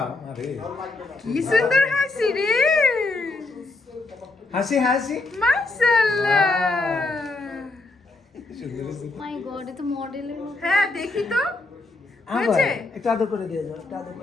আরে কি সুন্দর হাসি রে হাসি মাশাআল্লাহ মাই গড এটা মডেলের মতো হ্যাঁ দেখি তো আবার হয়েছে একটু আদর করে দিয়ে যাও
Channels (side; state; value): right; quieter; 3.3 dB